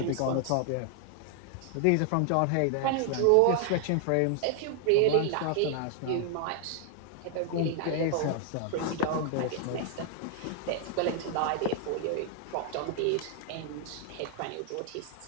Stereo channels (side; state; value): both; different; correlation 0.00